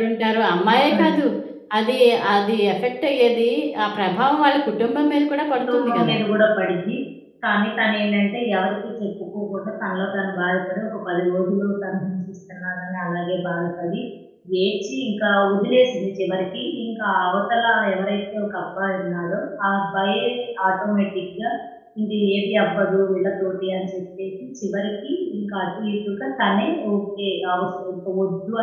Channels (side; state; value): both; identical; correlation 1.00